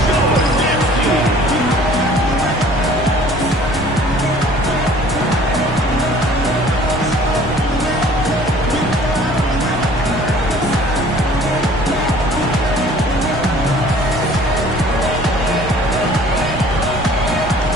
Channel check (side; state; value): both; normal; correlation 0.52